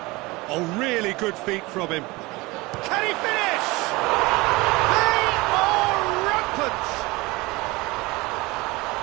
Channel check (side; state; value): left; quieter; 22.7 dB